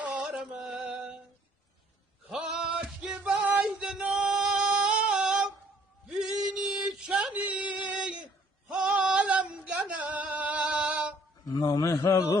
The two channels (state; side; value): normal; both; correlation 0.61